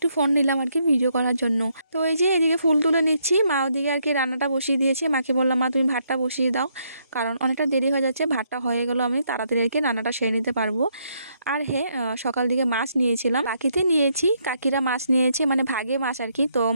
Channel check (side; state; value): both; inverted; correlation -0.74